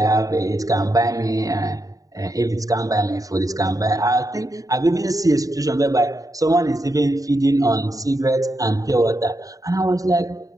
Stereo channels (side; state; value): left; late; 0.17 ms